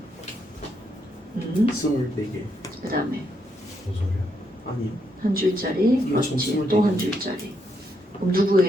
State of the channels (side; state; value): both; normal; correlation 0.78